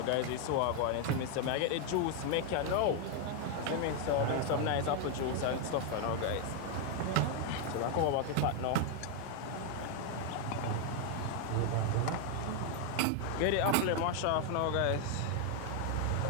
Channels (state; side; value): different; both; correlation 0.01